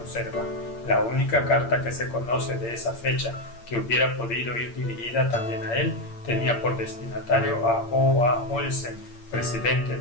La única carta que se conoce de esa fecha que hubiera podido ir dirigida también a él tenía por destinatario a O.A. Olsen, presidente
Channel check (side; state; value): right; late; 8.7 ms